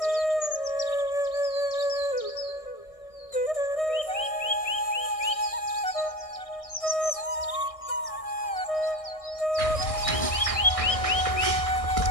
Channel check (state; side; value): late; right; 1.6 ms